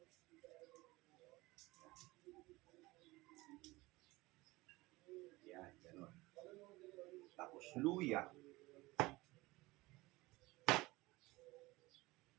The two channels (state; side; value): quieter; left; 20.9 dB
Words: Yan, gano'n. Tapos luya.